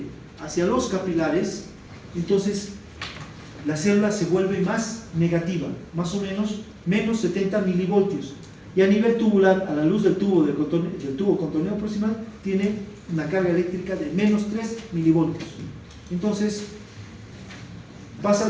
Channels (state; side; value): identical; both; correlation 1.00